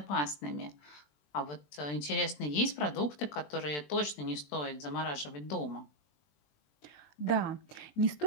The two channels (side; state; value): right; late; 20 ms